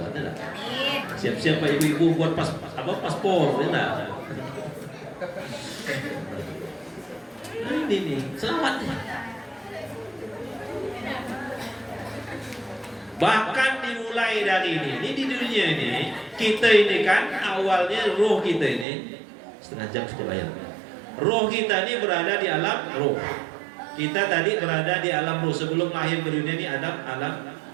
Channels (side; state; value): left; drops out; at 18.9 s